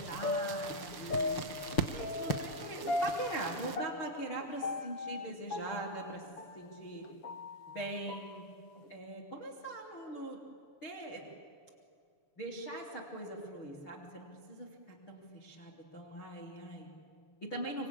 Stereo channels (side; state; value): right; late; 6.9 ms